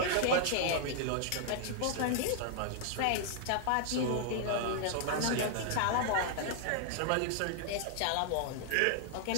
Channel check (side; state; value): both; different; correlation 0.00